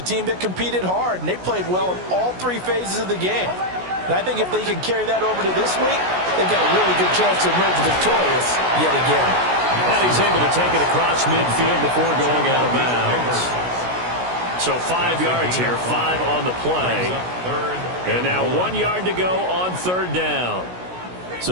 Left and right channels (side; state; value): left; late; 16 ms